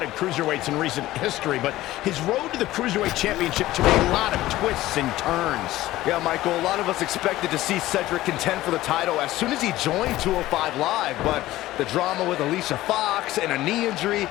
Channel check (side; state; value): right; quieter; 16.1 dB